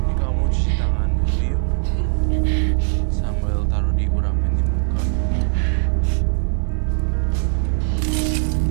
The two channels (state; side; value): silent; left; 66 dB below the other